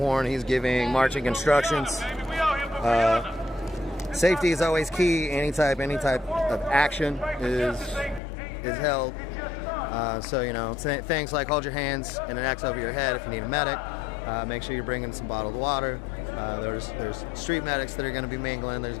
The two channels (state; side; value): drops out; right; at 8.2 s